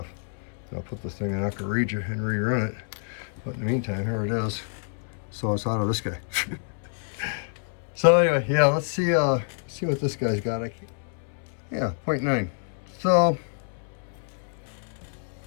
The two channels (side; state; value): right; silent; 60 dB below the other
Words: And I'll put this thing in aqua regia and rerun it. But in the meantime, here it is. So it's out of this guy. So anyway, yeah, let's see what this guy's got. Yeah, 0.9. So